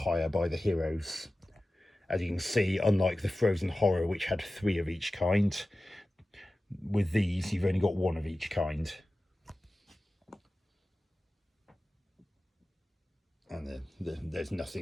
by the heroes. As you can see, unlike the Frozen Horror, which had 3 of each kind, with these you've only got 1 of each kind. And there's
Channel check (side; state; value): both; normal; correlation 0.95